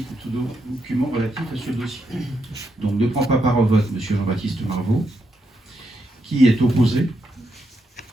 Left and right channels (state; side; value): normal; both; correlation 0.81